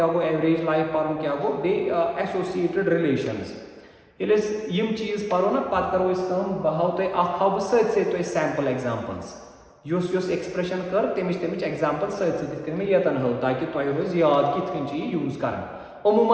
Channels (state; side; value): identical; both; correlation 1.00